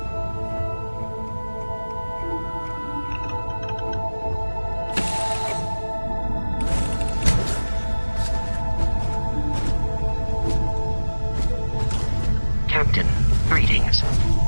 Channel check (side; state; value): both; inverted; correlation -1.00